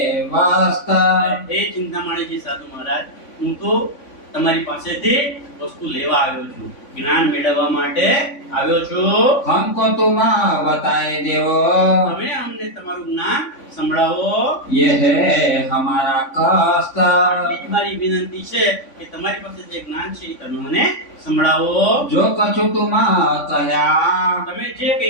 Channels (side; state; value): right; late; 3.5 ms